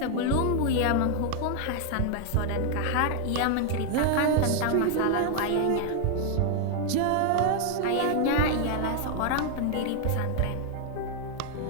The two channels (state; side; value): different; both; correlation 0.00